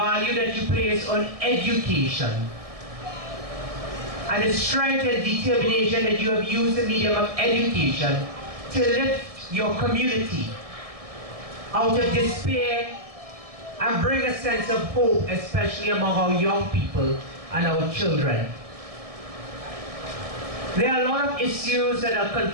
that you place on education, and the strength and determination that you have used the medium of education to lift your community out of despair and bring a sense of hope, especially among our young people and our children. There are a lot of issues that are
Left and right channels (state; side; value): late; left; 1.7 ms